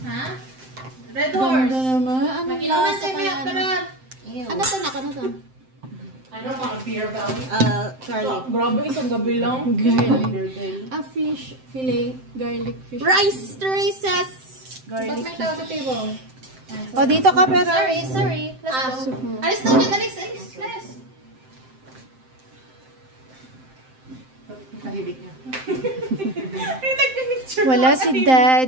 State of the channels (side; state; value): left; late; 7.7 ms